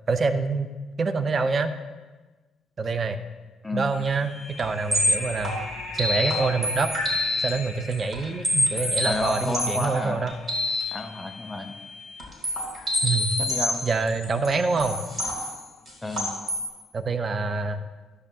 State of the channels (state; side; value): normal; both; correlation 0.71